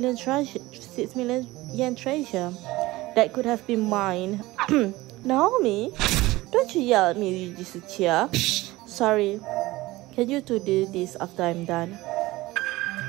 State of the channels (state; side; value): quieter; left; 19.1 dB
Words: yen treasure that could have been mine. Naomi, don't you yell at me, Yujisuchiya. Sorry. Can you two do this after I'm done?